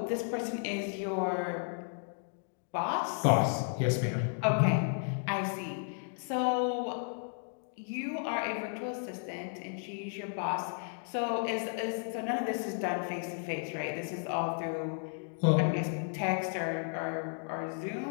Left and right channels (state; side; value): silent; right; 55 dB below the other